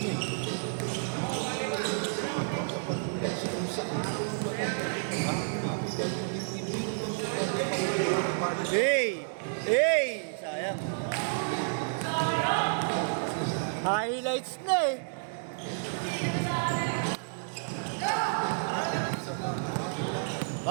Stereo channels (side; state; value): left; silent; digital silence